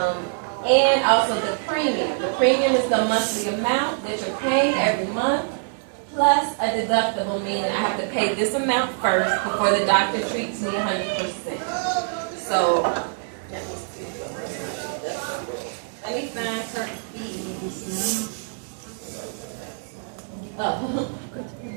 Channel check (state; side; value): silent; left; digital silence